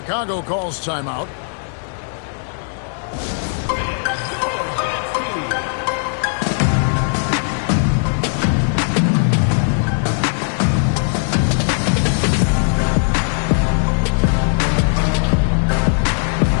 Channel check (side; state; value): right; silent; digital silence